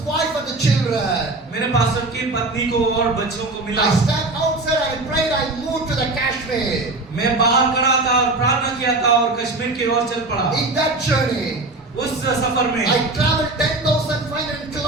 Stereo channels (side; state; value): left; quieter; 3.0 dB